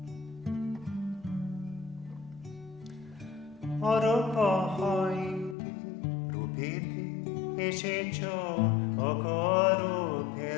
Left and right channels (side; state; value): right; drops out; at 5.6 s